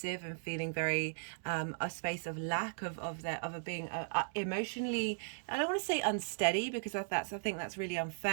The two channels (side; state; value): left; silent; digital silence